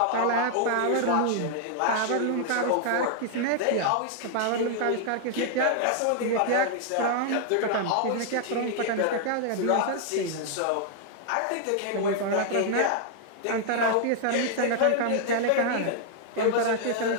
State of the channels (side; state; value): both; different; correlation -0.01